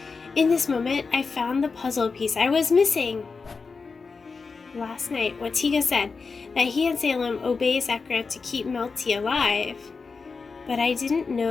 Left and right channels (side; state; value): right; quieter; 4.7 dB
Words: In this moment, I found the puzzle piece I was missing. Last night, what Tiga said, that he and Salem obey Sakura to keep Melty alive. But I didn't